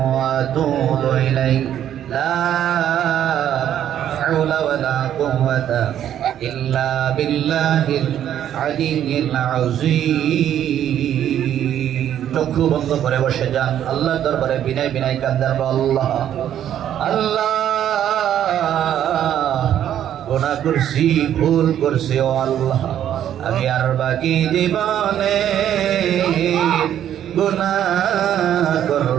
আতুবু ইলাইহি লা হাওলা ওয়ালা কুওয়াতা ইল্লা বিল্লাহিল আলিয়্যিল আযীম। চক্ষু বন্ধ করে বসে যান, আল্লাহর দরবারে বিনয় বিনয় কান্দার আল্লাহ আল্লাহ গুনাহ করছি, ভুল করছি ও আল্লাহ, আমি আর বাকি জীবনে গুনাহ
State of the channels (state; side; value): quieter; left; 10.6 dB